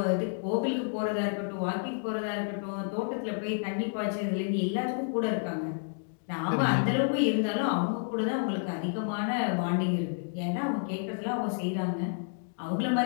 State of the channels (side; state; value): right; silent; digital silence